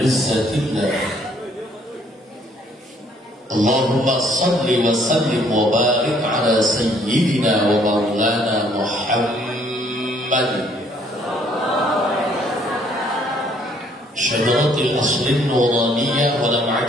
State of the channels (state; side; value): normal; both; correlation 0.63